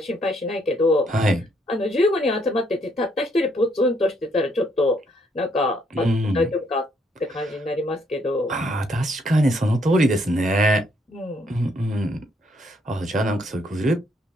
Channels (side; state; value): both; normal; correlation 0.71